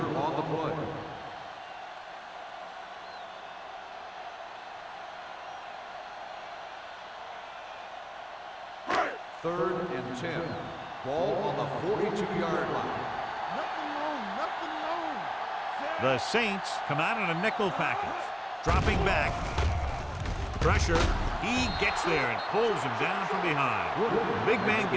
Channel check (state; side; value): identical; both; correlation 1.00